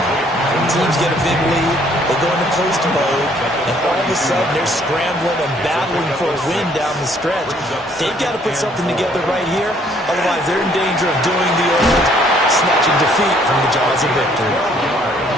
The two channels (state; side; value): normal; both; correlation 0.63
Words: When teams get a big lead, they go into post mode, and all of a sudden they're scrambling and battling for a win down the stretch. They've got to put something together right here, otherwise they're in danger of doing the old snatching defeat from the jaws of victory.